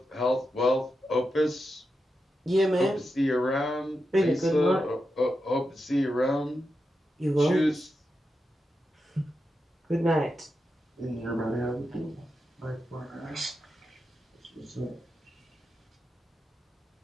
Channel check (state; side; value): normal; both; correlation 0.88